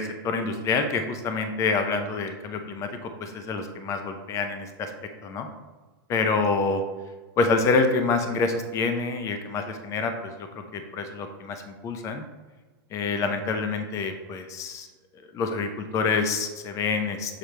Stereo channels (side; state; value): right; quieter; 3.7 dB